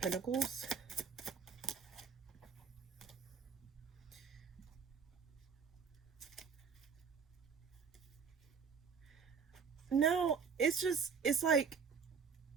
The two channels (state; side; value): quieter; left; 6.1 dB